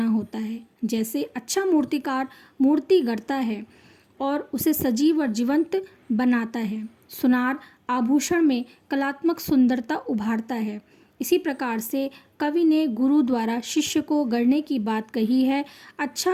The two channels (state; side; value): identical; both; correlation 1.00